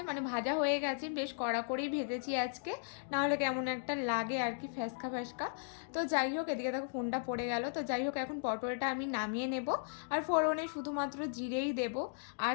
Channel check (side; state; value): right; silent; digital silence